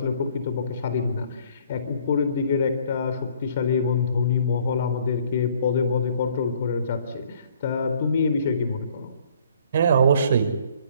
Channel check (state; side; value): inverted; both; correlation -0.59